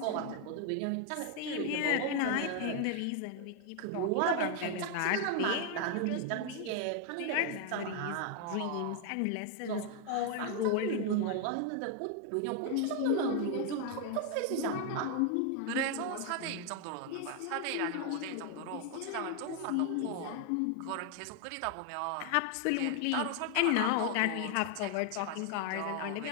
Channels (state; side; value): different; both; correlation 0.00